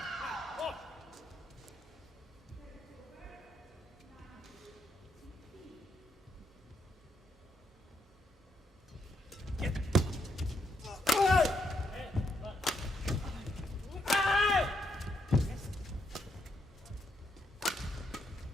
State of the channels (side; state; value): both; normal; correlation 0.77